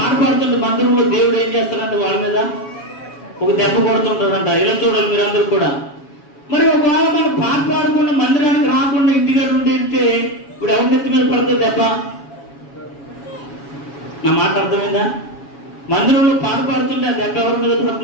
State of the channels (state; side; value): late; right; 7.2 ms